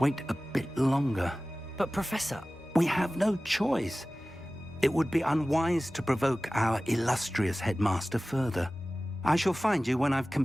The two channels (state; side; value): normal; both; correlation 0.97